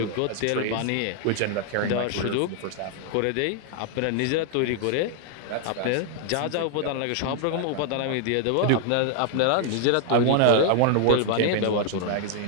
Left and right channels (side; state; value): both; different; correlation 0.00